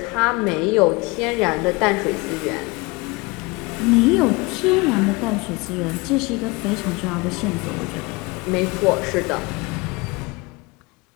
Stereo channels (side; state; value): right; quieter; 25.2 dB